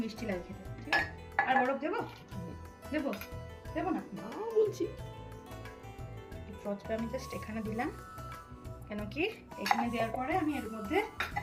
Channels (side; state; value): both; identical; correlation 1.00